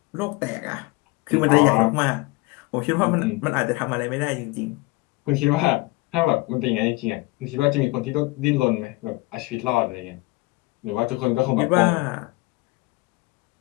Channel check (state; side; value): quieter; right; 22.8 dB